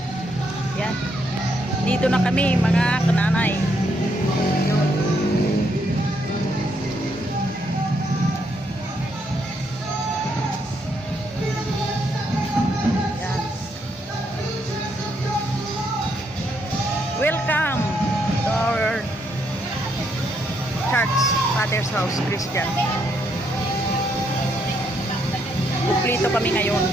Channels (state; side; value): normal; both; correlation 0.75